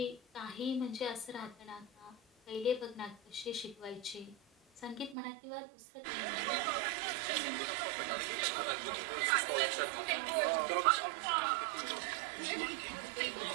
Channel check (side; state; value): left; drops out; at 5.2 s